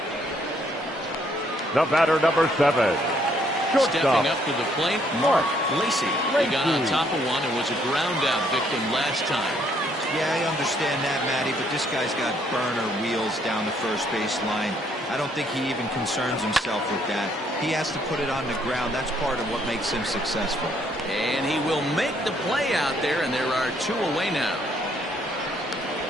The batter, number 7. Stepping up to the plate, Mark Lacey. He got on top of one and was a ground out victim last time. Yeah, I understand that, Matty, but this guy's got burner wheels down the first base line. I don't think he even concerns himself with that. He has to put it on the ground. That's part of what makes him successful. And he will make the play out there, and there are 2 away now.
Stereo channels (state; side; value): normal; both; correlation 0.68